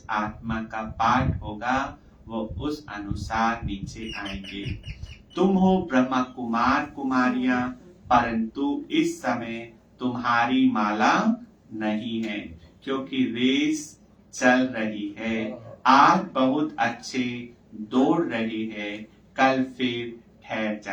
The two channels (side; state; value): both; identical; correlation 1.00